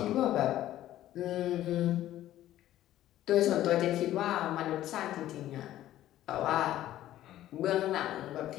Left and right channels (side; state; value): right; quieter; 13.5 dB